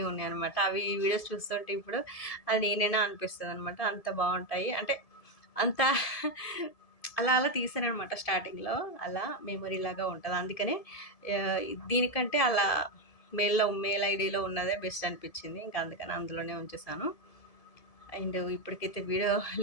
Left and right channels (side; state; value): right; late; 1.7 ms